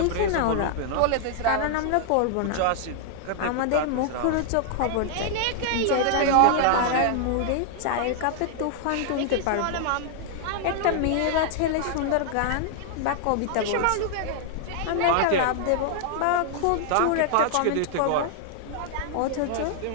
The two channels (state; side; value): different; both; correlation 0.00